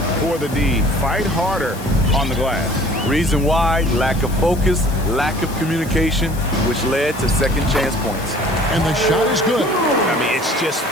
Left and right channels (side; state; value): left; noise; hiss, 16 dB below the sound